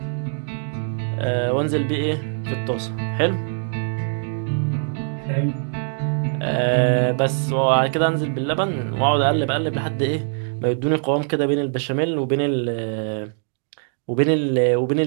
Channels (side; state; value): left; silent; digital silence